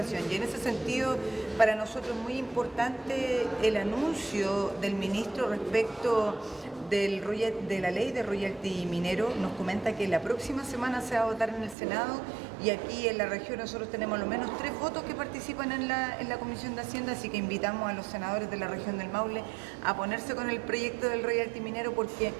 Y en ese sentido, para nosotros es muy importante el anuncio del ministro respecto de la ley de royalty minero. Nos comenta que la próxima semana se va a votar en el Senado y aquí en la región nosotros tenemos al menos 3 votos que participan en la Comisión de Hacienda, así que invitamos a los senadores de la región del Maule a ponerse con el proyecto del royalty minero porque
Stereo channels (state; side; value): drops out; left; at 11.8 s